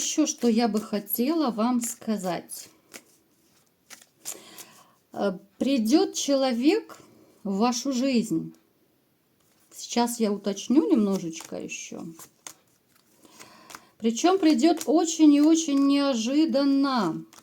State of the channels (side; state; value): both; identical; correlation 1.00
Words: что я бы хотела вам сказать? Придет человек в вашу жизнь. Сейчас я уточню немножечко еще. Причем придет очень и очень неожиданно.